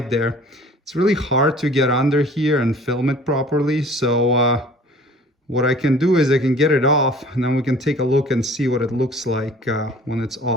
there. It's really hard to get under here and film it properly, so what I can do is I can get it off, and then we can take a look and see what it looks like when it's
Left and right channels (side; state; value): both; normal; correlation 0.49